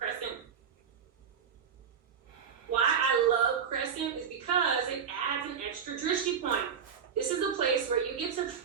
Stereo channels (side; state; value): left; quieter; 7.2 dB